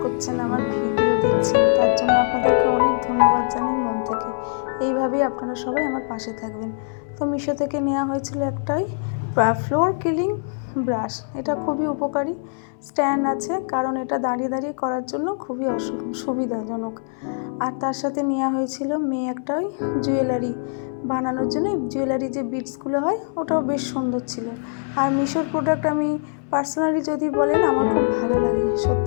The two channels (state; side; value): silent; right; 63 dB below the other